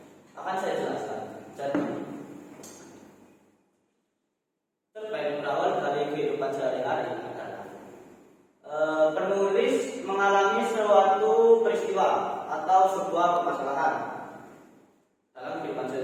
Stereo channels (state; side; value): identical; both; correlation 1.00